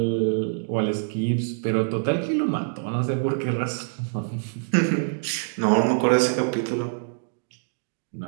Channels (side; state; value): left; silent; digital silence